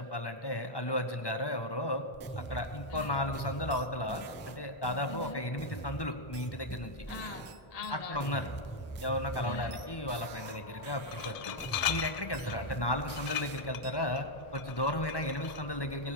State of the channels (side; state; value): right; late; 1.1 ms